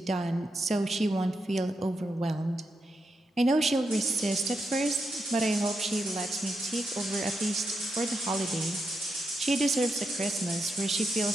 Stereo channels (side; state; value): both; normal; correlation 0.84